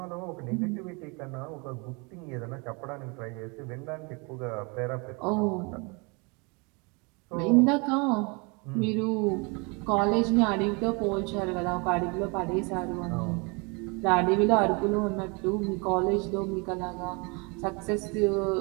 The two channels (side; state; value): left; quieter; 30.5 dB